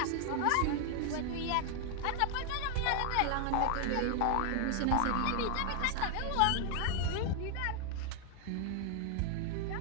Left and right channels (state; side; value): different; both; correlation 0.00